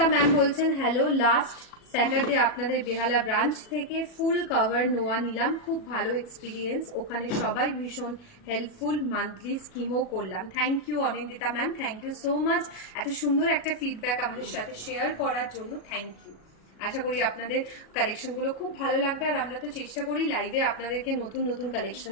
ম্যাম বলছেন হ্যালো, লাস্ট স্যাটারডে আপনাদের বেহালা ব্রাঞ্চ থেকে ফুল কভার নোয়া নিলাম, খুব ভালো এক্সপিরিয়েন্স, ওখানে সবাই ভীষণ হেল্পফুল, মান্থলি স্কিমও করলাম। Thank you Anindita ma'am, thank you so much এত সুন্দর একটা ফিডব্যাক আমাদের সাথে শেয়ার করার জন্য। Thank you. আশা করি আপনাদের কালেকশনগুলো খুব ভালো লাগবে, আর আমরা তো চেষ্টা করি লাইভে আপনাদেরকে নতুন নতুন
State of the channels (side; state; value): right; late; 37 ms